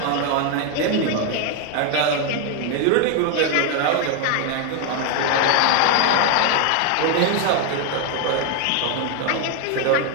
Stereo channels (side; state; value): both; different; correlation 0.01